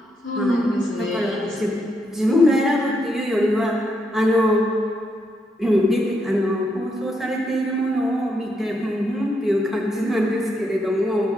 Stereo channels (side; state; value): both; normal; correlation 0.79